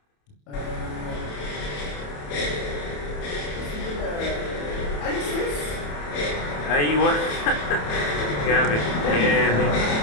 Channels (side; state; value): right; late; 28 ms